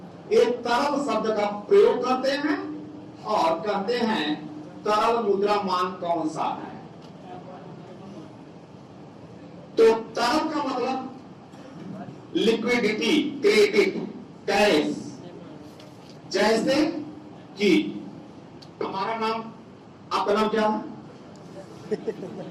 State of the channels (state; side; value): identical; both; correlation 1.00